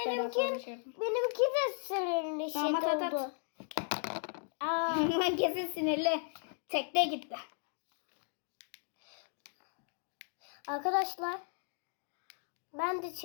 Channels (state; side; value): silent; right; 54 dB below the other